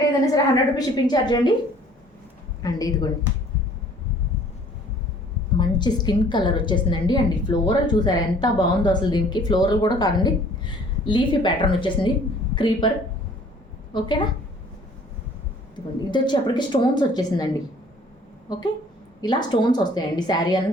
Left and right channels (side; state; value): both; normal; correlation 0.54